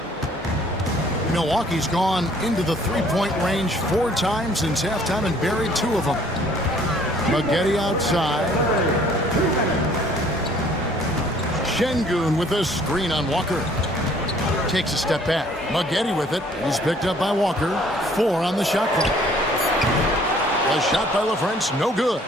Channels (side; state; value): both; normal; correlation 0.58